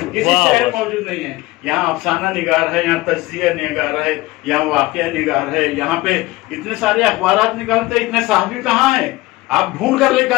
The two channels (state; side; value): quieter; right; 19.9 dB